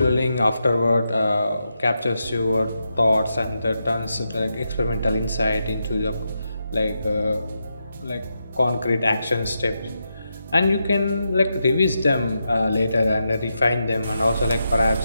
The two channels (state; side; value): inverted; both; correlation -0.86